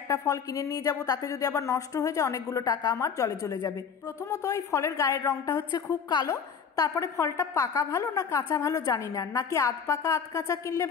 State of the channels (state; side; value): quieter; right; 6.7 dB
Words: ফল কিনে নিয়ে যাব, তাতে যদি আবার নষ্ট হয়ে যায় অনেকগুলো টাকা আমার জলে চলে যাবে। প্রথমত এই ফলের গায়ের রংটা হচ্ছে খুব কালো। তারপরে ফলটা পাকা ভালো না কাঁচা ভালো জানি না, নাকি আধ পাকা আধ কাঁচা কিনলে